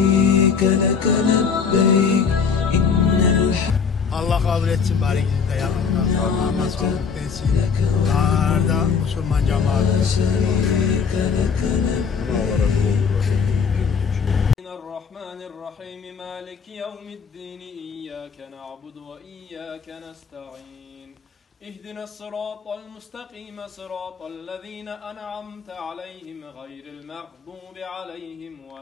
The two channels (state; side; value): quieter; right; 6.0 dB